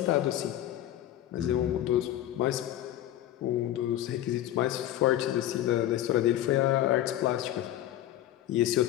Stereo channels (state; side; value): quieter; right; 13.0 dB